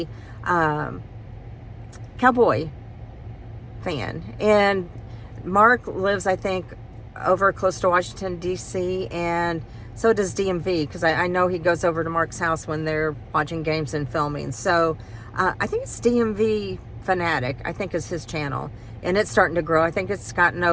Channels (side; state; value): both; identical; correlation 1.00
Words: cowboy fan. And Mark lives, I think, over close to Washington, D.C., and so does DMV, because I know he goes over to Mark's house when they're watching games and filming. So I think it's DMV Fanatic, I think is his channel. And it's starting to grow. I think it's gotten